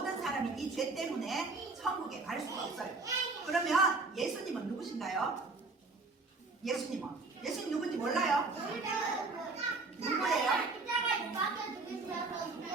사람이 이 죄 때문에 천국에 갈 수가 없어요. 그러면 예수님은 누구신가요? 예수님 누군지 몰라요? 누구예요?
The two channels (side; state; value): left; quieter; 3.7 dB